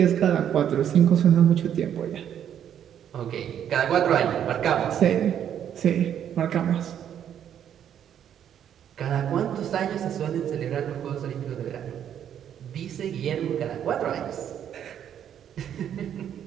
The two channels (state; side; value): quieter; left; 9.5 dB